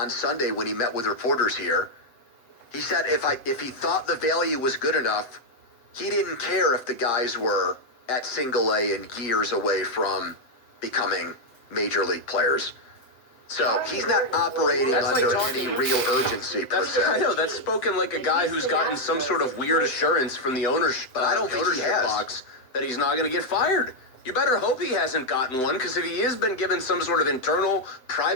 Sunday when he met with reporters here. He said if he thought the value was good enough, he didn't care if the guys were at single A and years away from becoming major league players. So he's not operating under any real urgency per se. I know, that's spoken like a guy who's gotten some sort of weird assurance from the ownership, but I don't think he has. Box that he's not going to get fired. You better hope he hasn't gotten one, because if he has been given some sort of internal,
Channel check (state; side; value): late; right; 7.9 ms